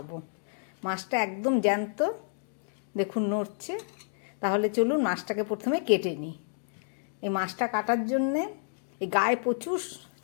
মাছটা একদম জ্যান্ত, দেখুন নড়ছে। তাহলে চলুন মাছটাকে প্রথমে কেটে নিই। এই মাছটা কাটার জন্যে এই গায়ে প্রচুর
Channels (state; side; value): silent; right; digital silence